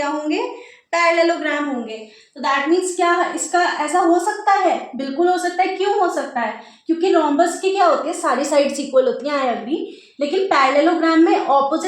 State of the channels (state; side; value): identical; both; correlation 1.00